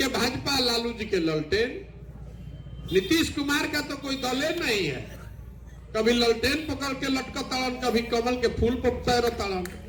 भाजपा, लालू जी के ललटेन। नीतीश कुमार का तो कोई दल नहीं है। कभी ललटेन पकड़ के लटका ताड़न, कभी कमल के फूल पर तैर ताड़न।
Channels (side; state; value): both; identical; correlation 1.00